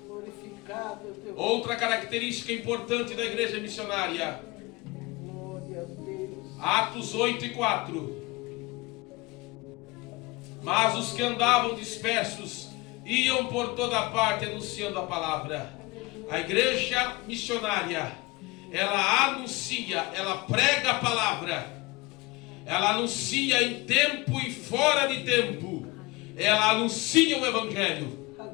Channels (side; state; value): right; quieter; 22.6 dB